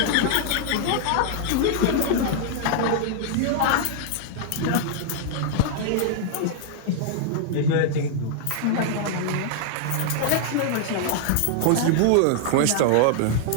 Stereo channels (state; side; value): different; both; correlation -0.01